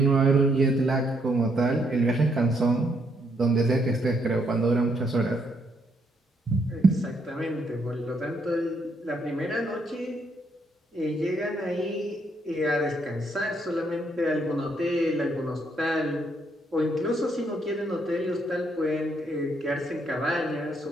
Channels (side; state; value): both; normal; correlation 0.73